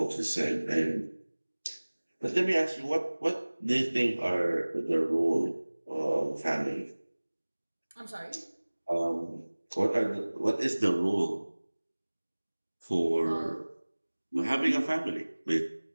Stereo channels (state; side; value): inverted; both; correlation -1.00